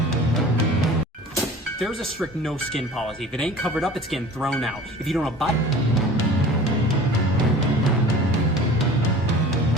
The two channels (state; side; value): normal; both; correlation 0.42